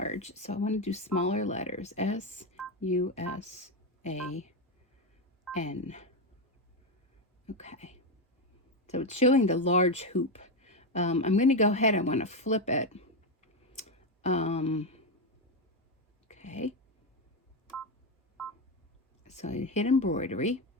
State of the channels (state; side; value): normal; both; correlation 0.10